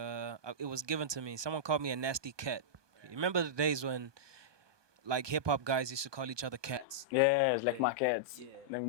was given to me. Someone called me a nasty cat. You remember the days when like hip hop guys used to call each other cats? Yes, like my cats. Yeah. Then we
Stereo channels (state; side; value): late; left; 1.2 ms